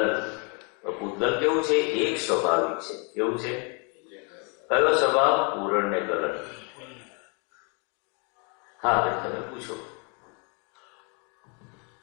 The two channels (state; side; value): quieter; right; 34.9 dB